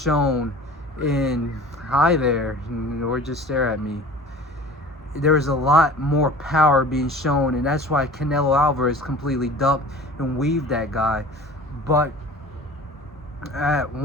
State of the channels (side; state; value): both; normal; correlation 0.41